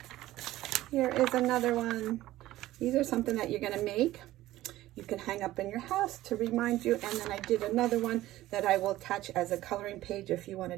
Here is another one. These are something that you're going to make. You can hang up in your house to remind you. And then I did another one that I will attach as a coloring page if you want to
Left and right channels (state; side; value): quieter; left; 15.7 dB